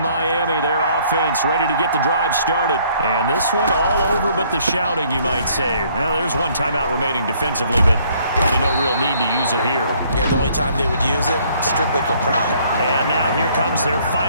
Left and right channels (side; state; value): both; inverted; correlation -0.63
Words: their offense ready to get the drive started. And this one all over but the shouting, you might say. Now, there's one timeout remaining defensively, but probably no real need to use it here. Yeah, the only time they would use it, strictly for pride. And now here comes their